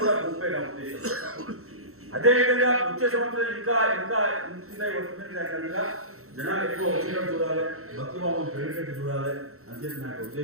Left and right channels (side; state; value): left; late; 0.63 ms